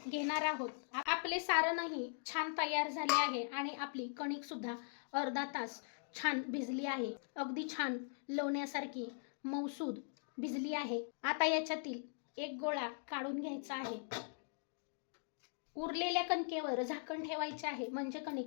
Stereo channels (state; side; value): silent; right; digital silence